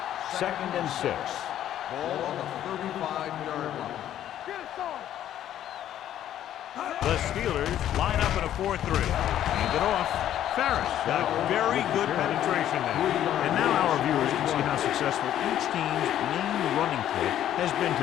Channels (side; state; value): right; quieter; 11.5 dB